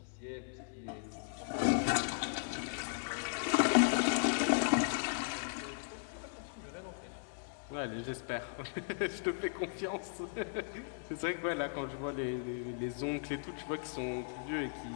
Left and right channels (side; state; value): right; silent; 53 dB below the other